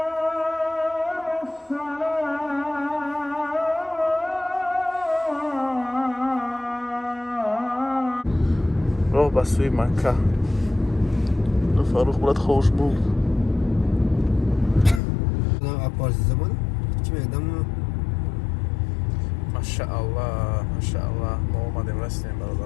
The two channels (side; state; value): right; drops out; at 15.0 s